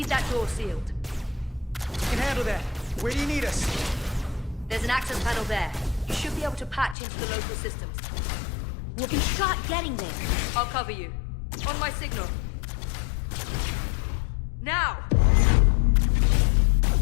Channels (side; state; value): right; drops out; at 7.0 s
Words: that door sealed. We can handle that. Where do you need us? There's an access panel there. You should be able to patch into the local systems. We'll be shot getting there. I'll cover you. On my signal. Now!